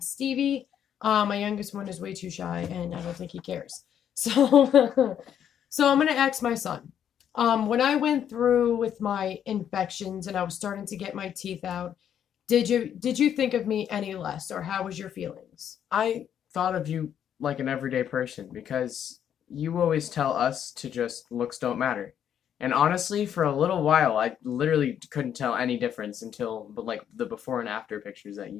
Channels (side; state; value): right; quieter; 9.3 dB